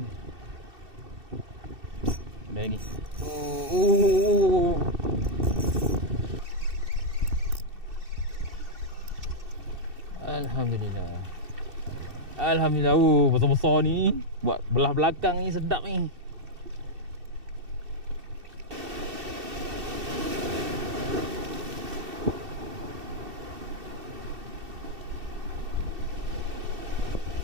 ni? Ada lagi. Alhamdulillah. Alhamdulillah. Besar-besar ni. Buat belah belakang ni sedap ni.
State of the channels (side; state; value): left; late; 2.7 ms